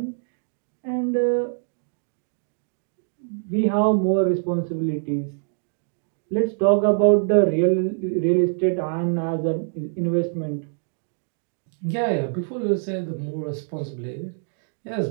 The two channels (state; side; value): silent; left; digital silence